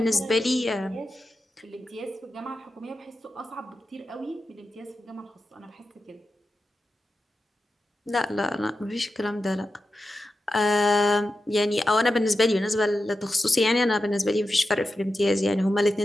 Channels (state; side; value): normal; both; correlation 0.91